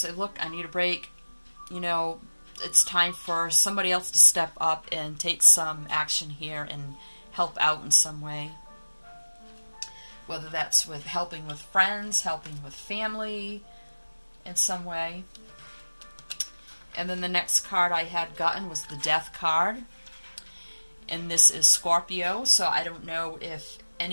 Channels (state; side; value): inverted; both; correlation -1.00